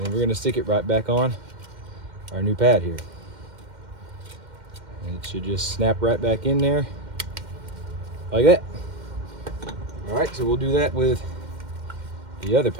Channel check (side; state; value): left; late; 2.1 ms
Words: then we're gonna stick it right back on our new pad here. And it should just snap right back in there like that. All right, so we'll do that with the other